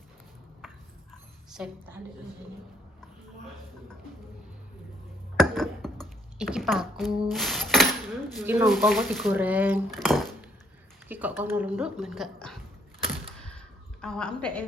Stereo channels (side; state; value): both; normal; correlation 0.68